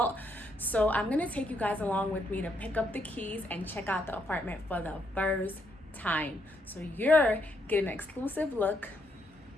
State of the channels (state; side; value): normal; both; correlation 0.76